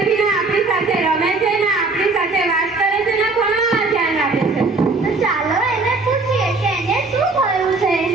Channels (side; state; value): left; quieter; 3.5 dB